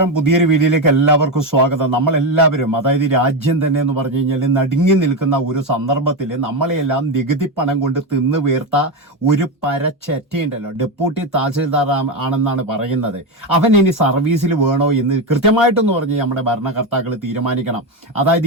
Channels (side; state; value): both; normal; correlation 0.12